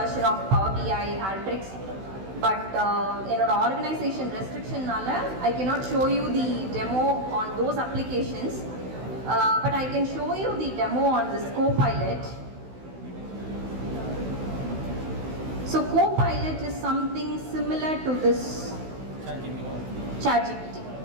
of Power BI, Alteryx, but என்னோட ஆர்கனைசேஷன் ரெஸ்ட்ரிக்ஷன்னால I cannot show you the demo on those applications. But I can show you the demo on this Copilot. So Copilot is something similar to this ChatGPT.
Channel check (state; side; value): late; left; 16 ms